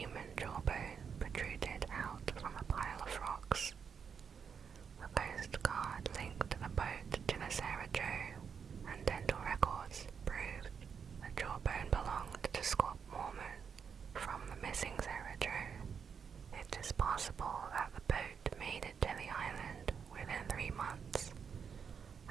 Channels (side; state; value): left; quieter; 6.7 dB